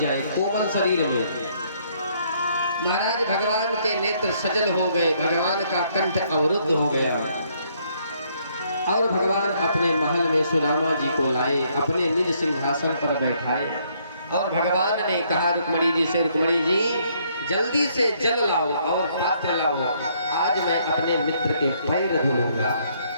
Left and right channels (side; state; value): both; inverted; correlation -0.69